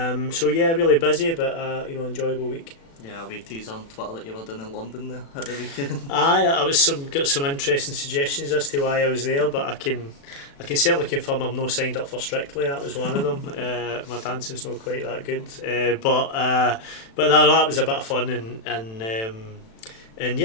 yeah, really busy, but enjoyable week. Yeah, we teased on Twitter that you were doing in London there at the weekend. I got some interesting suggestions as to why I was there, but I can certainly confirm I'm not signed up for Strictly. That was one of them. My dancing's not quite that good, but that was a bit of fun and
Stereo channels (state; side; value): late; right; 36 ms